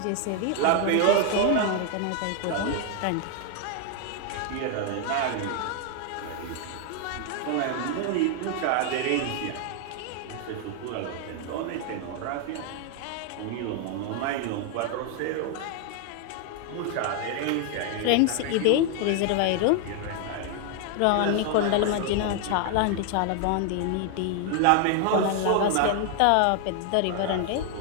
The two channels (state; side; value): different; both; correlation 0.00